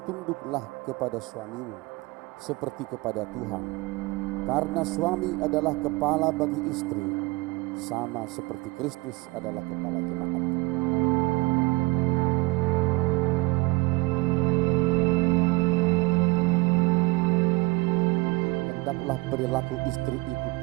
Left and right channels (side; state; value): left; quieter; 23.3 dB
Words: tunduklah kepada suamimu seperti kepada Tuhan, karena suami adalah kepala bagi istri, sama seperti Kristus adalah kepala jemaat. Hendaklah perilaku istri itu